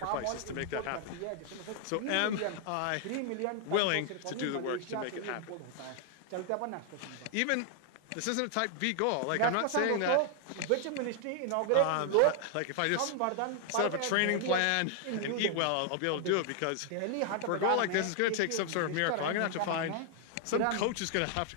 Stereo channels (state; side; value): different; both; correlation 0.00